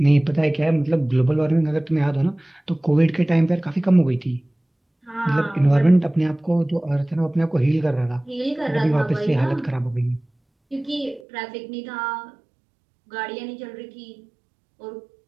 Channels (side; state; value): left; drops out; at 11.2 s